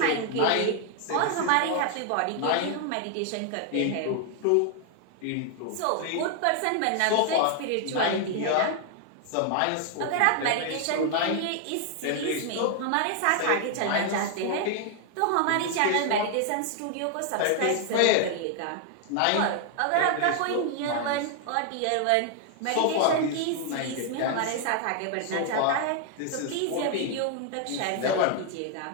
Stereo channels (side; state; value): both; different; correlation 0.00